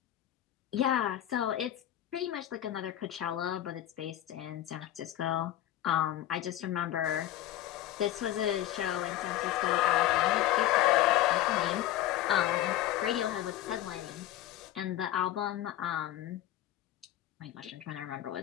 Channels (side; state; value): right; quieter; 13.3 dB